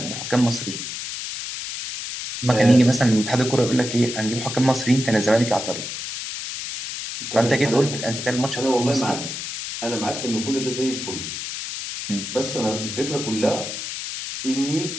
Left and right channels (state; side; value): noise; left; hiss, 6 dB below the sound